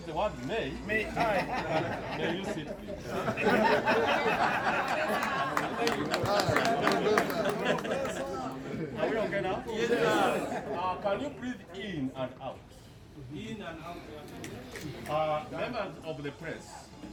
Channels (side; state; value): both; identical; correlation 1.00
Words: the word may. May I? May you sit, please. Are we okay now? Yes, can you breathe in and out? In and out. Members of the press,